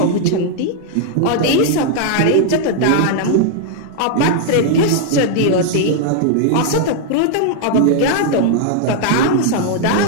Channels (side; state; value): both; different; correlation 0.00